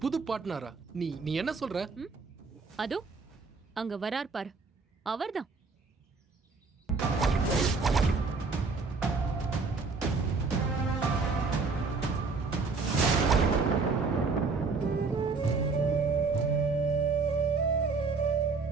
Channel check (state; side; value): quieter; left; 4.4 dB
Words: புது பார்ட்னரா? நீ என்ன சொல்ற? அதோ அங்க வரார் பாரு, அவர்தான்.